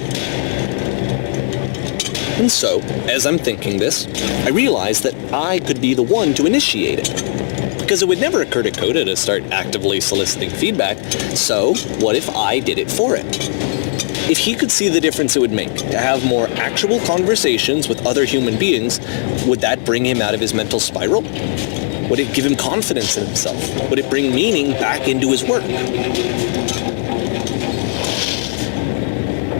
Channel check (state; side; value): silent; right; digital silence